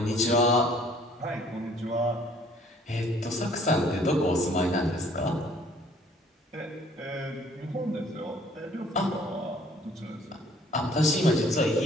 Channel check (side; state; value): both; normal; correlation 0.58